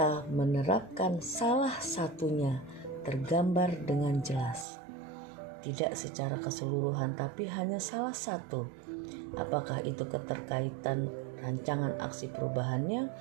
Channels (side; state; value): left; drops out; at 4.7 s